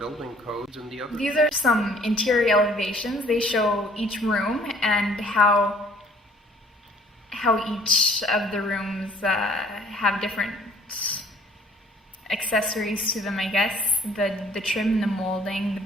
codes, and the other. These are some interior elevations. They show each room and how each of the rooms have different accessories to them, I guess. The trim, the molding, the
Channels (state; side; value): normal; both; correlation 0.56